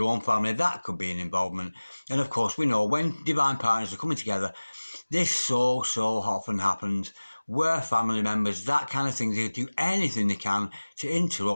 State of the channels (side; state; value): both; inverted; correlation -1.00